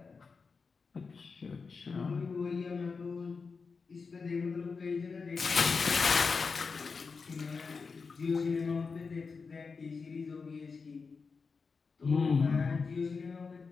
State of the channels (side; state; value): right; quieter; 4.9 dB